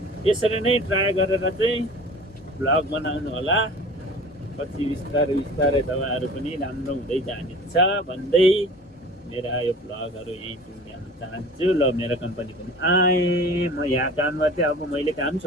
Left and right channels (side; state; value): both; normal; correlation 0.42